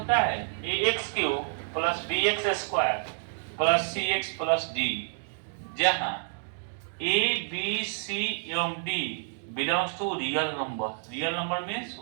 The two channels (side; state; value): left; silent; digital silence